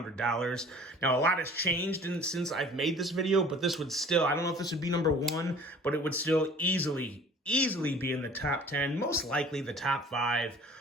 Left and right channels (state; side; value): normal; both; correlation 0.48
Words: Now a lot has changed since I've made this video, but this would still, I don't know if this would be number one, but it would still easily be in the top 10, most likely the top 5.